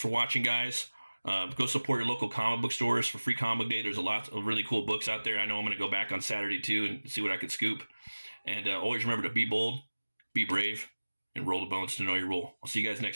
watching, guys. Go support your local comic book stores for Free Comic Book Day. There's a lot of really cool books out there. I know I'm going to go back on Saturday too and see what I could scoop. And always remember to be bold, be brave, and roll the bones to know your role. I'll see you guys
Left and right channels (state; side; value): inverted; both; correlation -1.00